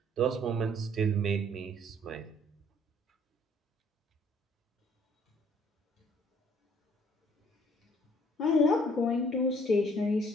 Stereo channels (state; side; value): normal; both; correlation 0.60